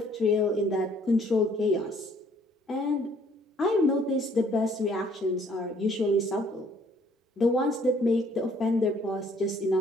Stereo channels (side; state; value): both; normal; correlation 0.61